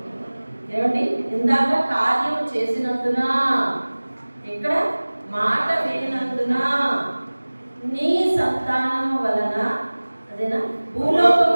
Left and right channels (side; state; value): both; inverted; correlation -1.00